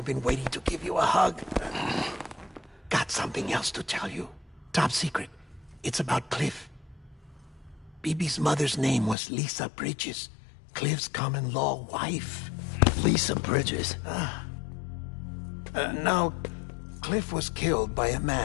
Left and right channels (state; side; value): drops out; right; at 9.2 s